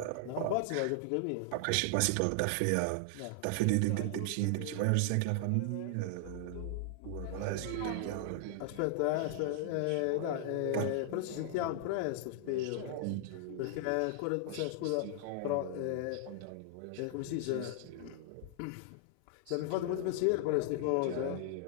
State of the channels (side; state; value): both; different; correlation -0.01